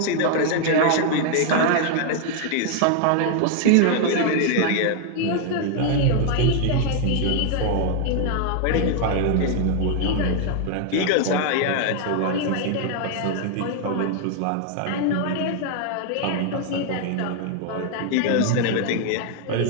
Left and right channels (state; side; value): different; both; correlation 0.00